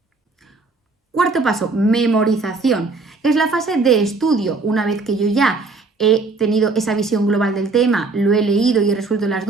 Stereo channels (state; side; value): quieter; left; 3.8 dB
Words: Cuarto paso, memorización. Es la fase de estudio. Una vez que yo ya he tenido esa visión global del tema, lo he leído y he resuelto las